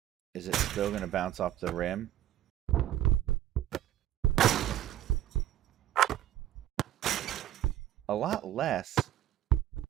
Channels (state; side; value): quieter; left; 12.7 dB